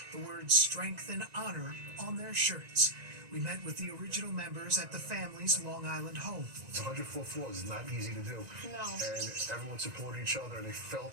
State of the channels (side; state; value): left; late; 1.9 ms